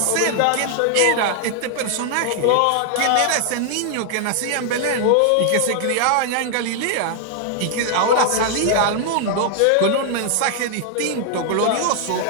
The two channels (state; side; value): different; both; correlation 0.00